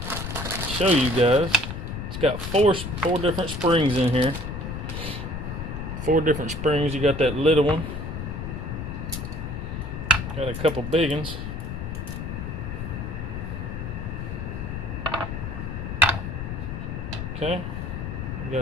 show you guys. It's got four different springs in here. 4 different springs. You got that little one. Got a couple big ones. Okay, you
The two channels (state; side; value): noise; left; rumble, 5 dB below the sound